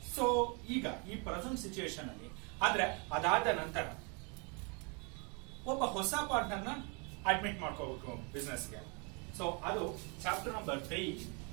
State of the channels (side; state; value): left; quieter; 33.4 dB